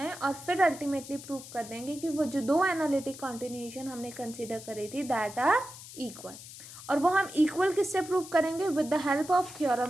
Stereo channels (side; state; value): left; noise; hiss, 15 dB below the sound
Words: और फिर अल्टीमेटली प्रूव कर देंगे कि वो जो दो एनालिटिक कॉन्टिन्यूशन हमने कंसिडर करी थी दैट आर इक्वल. और वो हम इक्वल किससे प्रूव करेंगे? With the help of